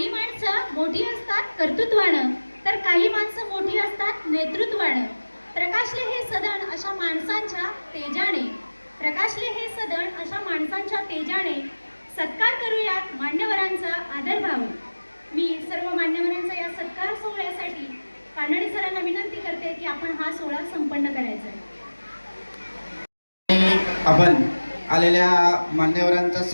माणसं मोठी असतात कर्तृत्वानं, तर काही माणसं मोठी असतात नेतृत्वानं. प्रकाशले हे सदन अशा माणसांच्या तेजाने, प्रकाशले हे सदन अशा माणसांच्या तेजाने सत्कार करूयात मान्यवरांचा आदरभाव. मी सर्व मान्यवरांचा या सत्कार सोहळ्यासाठी कानडे सरांना विनंती करते की आपण हा सोहळा संपन्न करायचा आहे. आपण आलेल्या मान्यवरांचा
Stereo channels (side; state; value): both; inverted; correlation -1.00